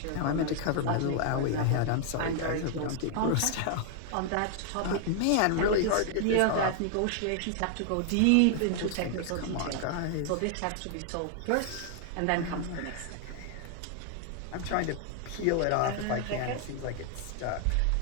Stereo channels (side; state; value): both; different; correlation 0.00